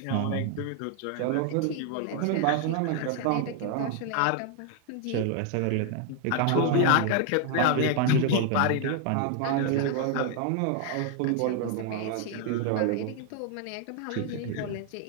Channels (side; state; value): both; different; correlation 0.00